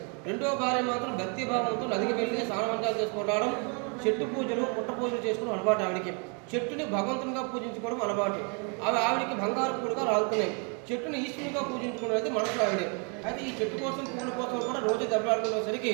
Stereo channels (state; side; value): quieter; left; 37.0 dB